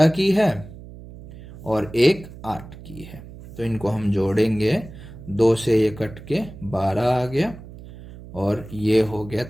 की है और एक 8 की है। तो इनको हम जोड़ेंगे, 2 से ये कट के 12 आ गया और ये हो गया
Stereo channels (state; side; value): noise; right; hum, 16 dB below the sound